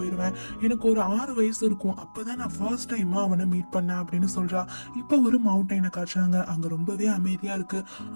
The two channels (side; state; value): both; inverted; correlation -1.00